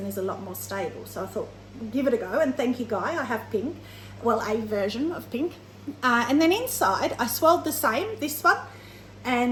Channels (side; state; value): both; identical; correlation 1.00